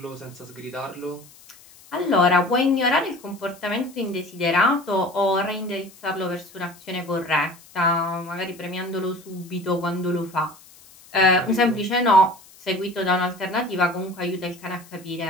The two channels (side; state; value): left; noise; hiss, 24 dB below the sound